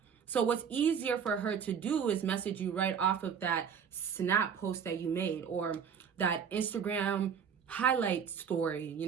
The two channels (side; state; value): left; quieter; 7.3 dB